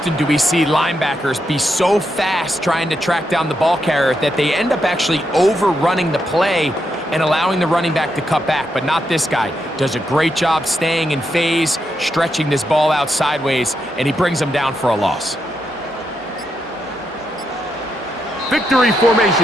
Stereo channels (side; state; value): both; normal; correlation 0.82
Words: do we see linebackers be so fast trying to track down the ball carrier that they end up actually overrunning the play and allowing the running back to cut back? But not this guy. Does a great job staying in phase, stretching this ball out sideways, and he brings them down for a loss. Victory